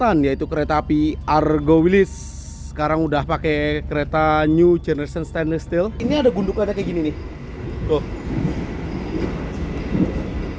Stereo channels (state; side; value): identical; both; correlation 1.00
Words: yaitu kereta api Argo Wilis. Sekarang udah pakai kereta new generation stainless steel. Ini ada gundukannya kayak gini nih. Tuh.